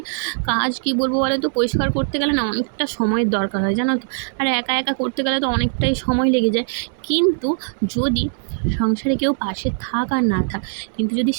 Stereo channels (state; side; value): silent; left; digital silence